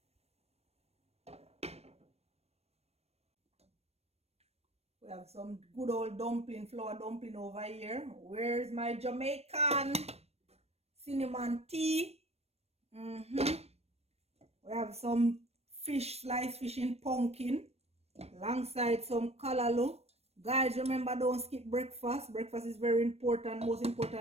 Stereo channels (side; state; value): left; late; 0.31 ms